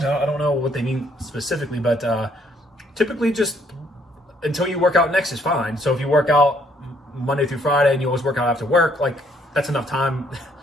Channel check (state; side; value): normal; both; correlation 0.67